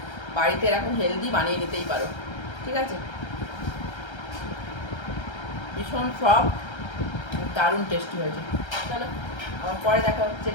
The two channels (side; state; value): right; late; 1.3 ms